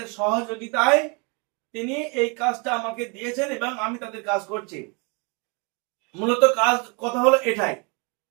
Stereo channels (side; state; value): left; quieter; 32.6 dB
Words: সহযোগিতায় তিনি এই কাজটা আমাকে দিয়েছেন এবং আমি তাদের কাজ করছি। মূলত কথা হলো এটাই,